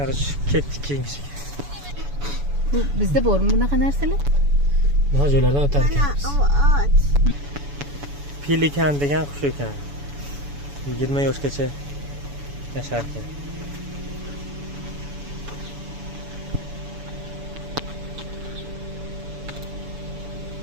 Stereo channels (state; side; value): late; left; 7.0 ms